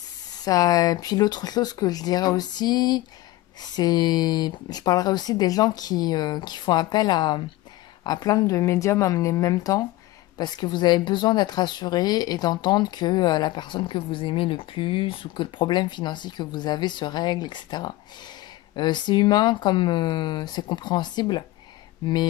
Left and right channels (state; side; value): quieter; right; 17.3 dB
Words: Et puis l'autre chose que je dirais aussi, je parlerai aussi des gens qui font appel à plein de médiums en même temps, parce que vous avez besoin d'être assuré et d'entendre que la personne que vous aimez le plus ou que le problème financier que vous avez se règle, etc. C'est humain comme c'est compréhensible,